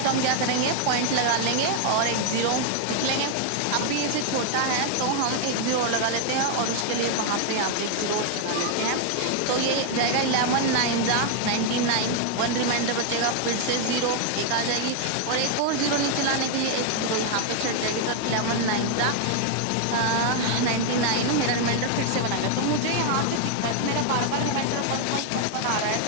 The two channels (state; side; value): different; both; correlation 0.00